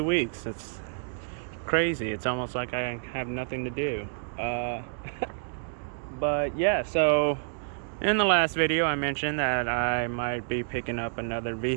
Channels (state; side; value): silent; left; digital silence